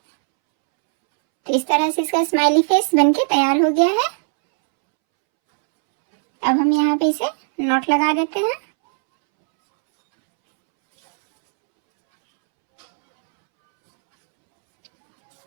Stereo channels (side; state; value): left; silent; 68 dB below the other